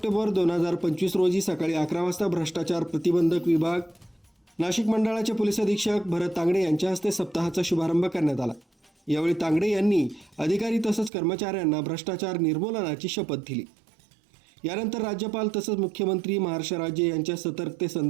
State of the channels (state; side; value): drops out; left; at 11.1 s